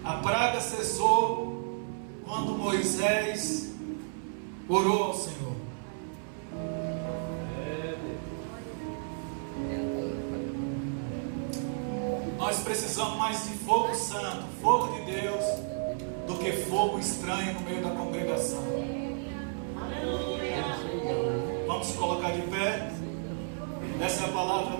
A praga cessou quando Moisés orou ao Senhor. Nós precisamos mais de fogo santo, fogo de Deus, do que fogo estranho no meio da congregação. Vamos se colocar de pé. Essa é a palavra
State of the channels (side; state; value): left; silent; 57 dB below the other